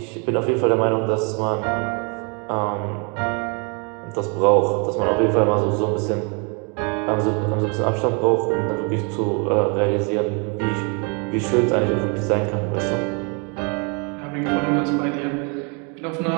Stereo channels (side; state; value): left; quieter; 34.9 dB